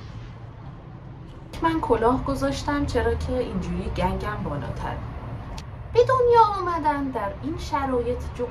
من کلاه گذاشتم چرا که اینجوری گنگم بالاتر. به دنیا آمدن در این شرایط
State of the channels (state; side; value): identical; both; correlation 1.00